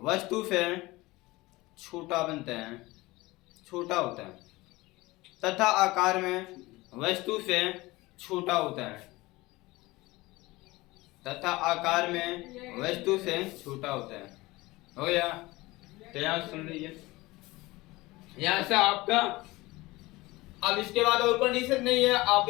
से छोटा बनता है, छोटा होता है तथा आकार में वस्तु से छोटा होता है तथा आकार में वस्तु से छोटा होता है। हो गया? तो यहाँ सुन लीजिए, यहाँ से आपका अब इसके बाद और कंडीशन नहीं है। आप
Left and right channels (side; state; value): right; quieter; 20.7 dB